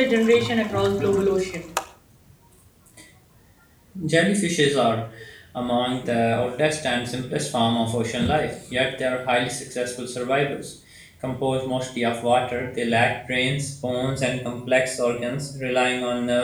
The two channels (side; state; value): both; identical; correlation 1.00